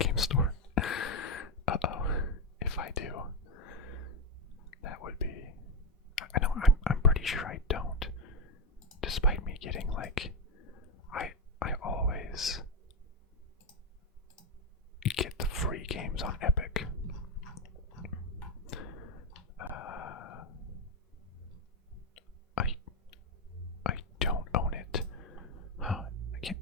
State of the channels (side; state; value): both; normal; correlation 0.05